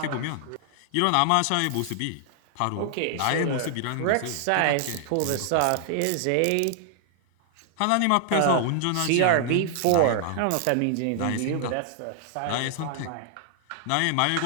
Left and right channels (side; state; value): both; different; correlation 0.00